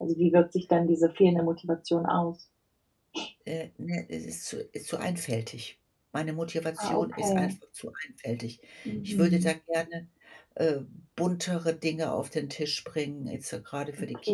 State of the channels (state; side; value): identical; both; correlation 1.00